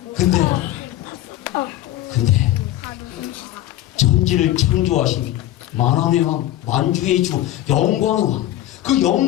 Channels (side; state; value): right; quieter; 13.8 dB